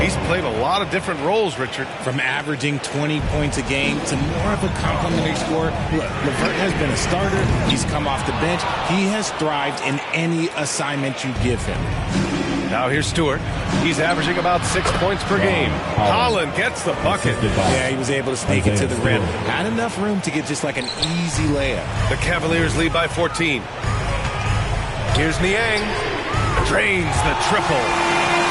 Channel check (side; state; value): both; identical; correlation 1.00